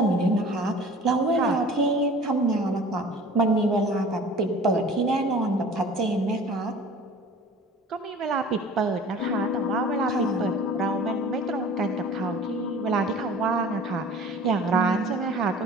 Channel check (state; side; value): normal; both; correlation 0.44